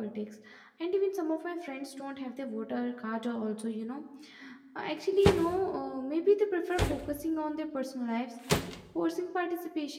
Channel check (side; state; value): both; identical; correlation 1.00